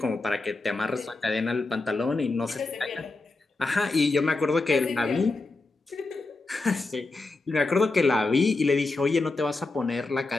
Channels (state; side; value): quieter; right; 3.4 dB